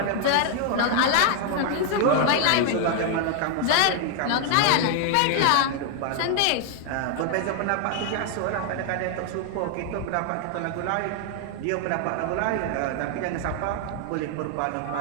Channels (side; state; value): both; different; correlation 0.00